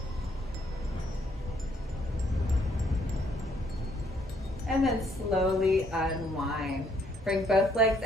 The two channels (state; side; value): normal; both; correlation 0.68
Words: And then slowly unwind. Bring both legs